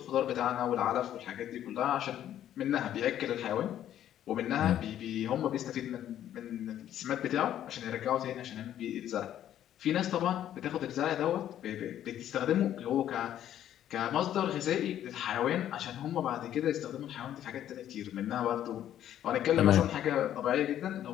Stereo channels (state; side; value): quieter; right; 11.2 dB